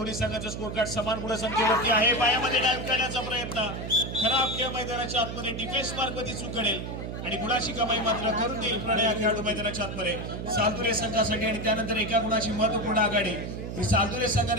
संघाचा स्कोर कार्ड समान गुणसंख्येवरती आहे. पायामध्ये डाईव्ह करण्याचा प्रयत्न खराब खेळ मैदानाच्या आतमध्ये डिफेन्स मार्कमध्ये चूक घडेल आणि गुणाची कमाई मात्र करून देईल प्रणय या खेळाडू मैदानाच्या आतमध्ये सालदुरे संघासाठी. आणि त्यानंतर एका गुणाची महत्वपूर्ण आघाडी ही सालदुरे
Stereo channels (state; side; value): noise; right; hum, 6 dB below the sound